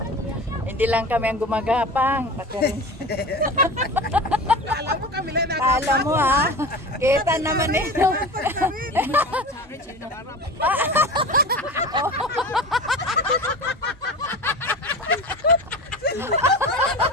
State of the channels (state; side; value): normal; both; correlation 0.32